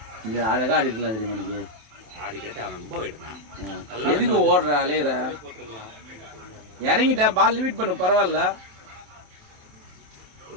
இது அழகா அடிக்கலாம் தெரியுமா நீங்க? ஆடி கேட்டா ரொம்ப வைடுனா. எதுக்கு ஓடுற அலையற? இறங்கிட்டா பால் லிமிட் பண்ணு பரவாயில்ல. ஒரு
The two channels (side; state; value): left; late; 27 ms